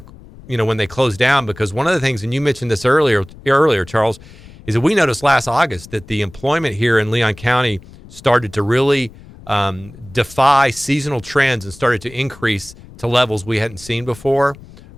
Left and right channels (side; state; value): left; noise; rumble, 20 dB below the sound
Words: when they closed down. Because one of the things, and you mentioned this earlier, Charles, is that we noticed last August that the employment here in Leon County started to really defy seasonal trends and started to increase to levels we hadn't seen before.